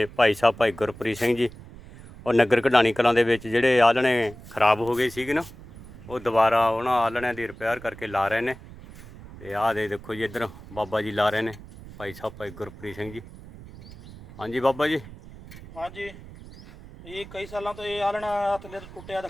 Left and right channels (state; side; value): noise; right; rumble, 17 dB below the sound